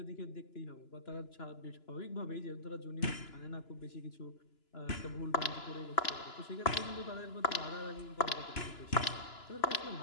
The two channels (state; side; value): late; right; 2.9 ms